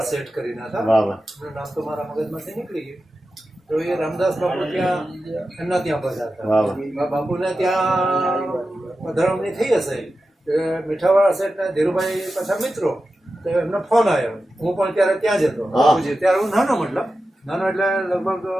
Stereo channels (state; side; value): normal; both; correlation 0.92